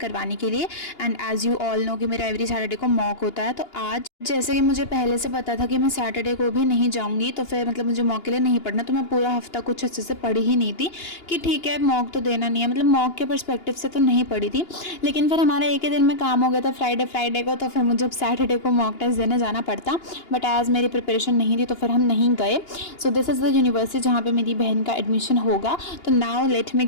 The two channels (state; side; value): late; right; 2.8 ms